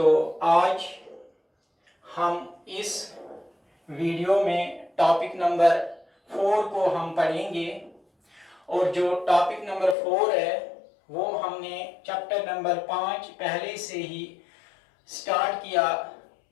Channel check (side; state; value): right; drops out; at 10.0 s